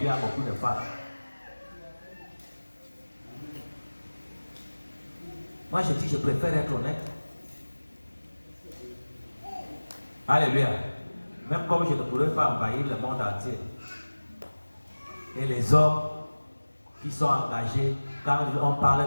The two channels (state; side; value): inverted; both; correlation -1.00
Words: a beaucoup de femmes. Moi je dis je préfère être honnête. Alléluia. Même comme je ne pourrais pas envahir le monde entier. Et les hommes qui sont engagés, quand on